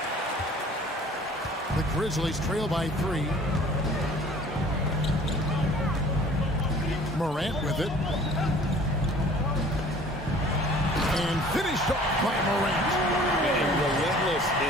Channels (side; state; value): both; normal; correlation 0.49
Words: The Grizzlies trail by 3. Morant with it. And finished off by Morant. And relentless